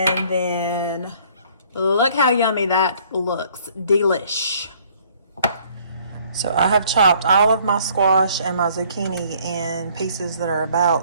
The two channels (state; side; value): inverted; both; correlation -0.60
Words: then look how yummy that looks. Delish. So I have chopped all of my squash and my zucchini in pieces that are